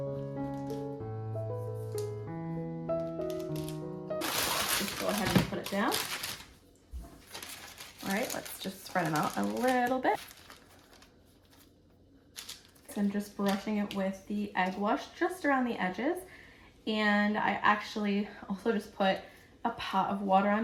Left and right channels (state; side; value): identical; both; correlation 1.00